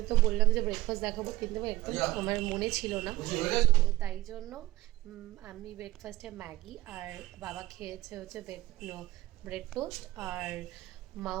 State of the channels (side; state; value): left; quieter; 17.1 dB